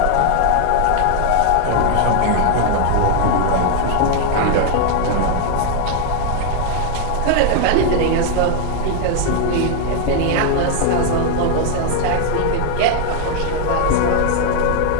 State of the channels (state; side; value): different; both; correlation 0.00